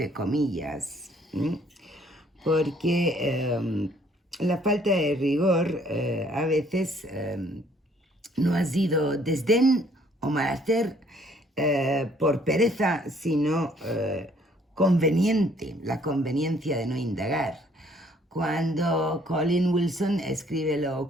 comillas, porque la falta de rigor a veces no ha sido desdén o mal hacer por pereza, sino conveniente, la conveniencia de no indagar. Cuando Colin Wilson escribe Lo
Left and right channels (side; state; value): both; normal; correlation 0.62